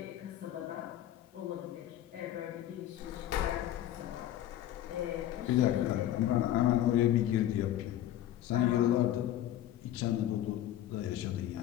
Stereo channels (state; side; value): quieter; right; 12.5 dB